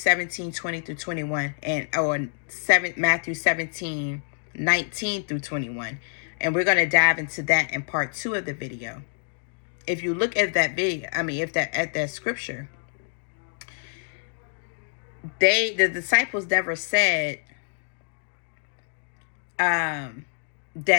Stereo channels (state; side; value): silent; right; digital silence